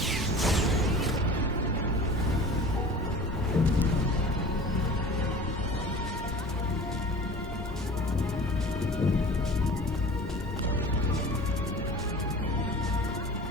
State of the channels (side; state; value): both; normal; correlation 0.40